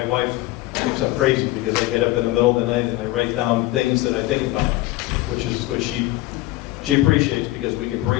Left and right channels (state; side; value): quieter; right; 18.0 dB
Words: wife thinks I'm crazy because I get up in the middle of the night and I write down things that I think about, which she appreciates because we can